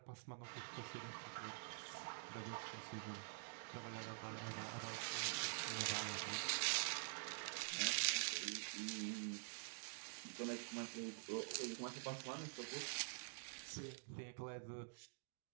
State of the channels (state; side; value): silent; left; digital silence